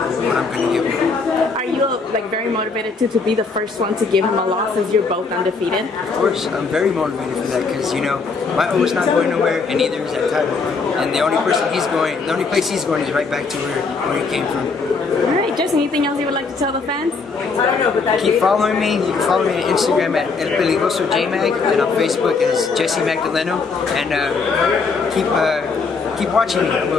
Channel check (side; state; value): right; quieter; 4.6 dB